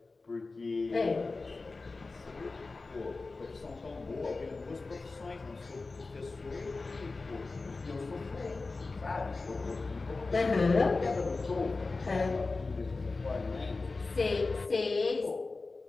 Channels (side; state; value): right; quieter; 3.7 dB